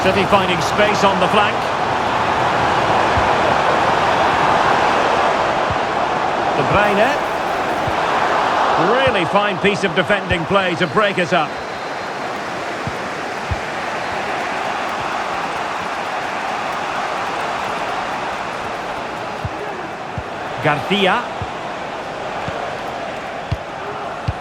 City finding space on the flank. De Bruyne. Really fine piece of defending play to break us up. Garcia.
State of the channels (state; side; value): identical; both; correlation 1.00